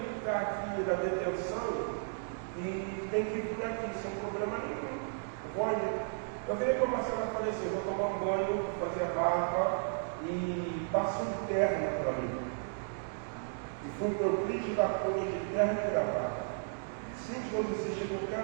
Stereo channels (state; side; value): silent; left; digital silence